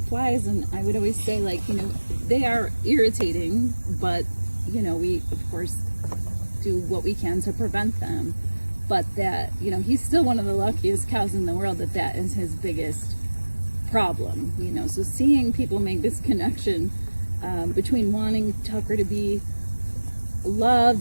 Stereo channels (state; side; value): inverted; both; correlation -1.00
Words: flies. And I would always say, they are irritating, but, we, of course, do what we can to prevent them. But that, he's still one of the luckiest cows in the world that is his biggest problem, So seeing people make this connection between wanting Tucker to be